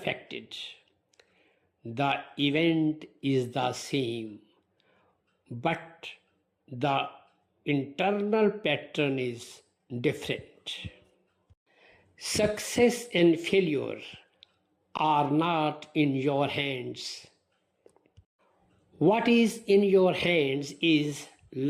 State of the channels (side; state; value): both; identical; correlation 1.00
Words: The event is the same, but the internal pattern is different. Success and failure are not in your hands. What is in your hands is